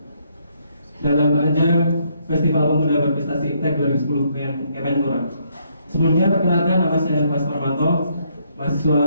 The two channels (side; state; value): both; inverted; correlation -0.71